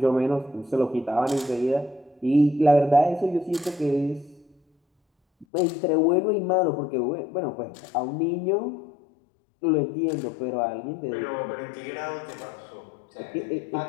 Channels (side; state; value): right; drops out; at 5.5 s